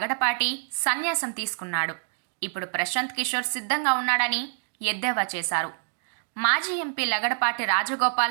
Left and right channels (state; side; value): silent; left; digital silence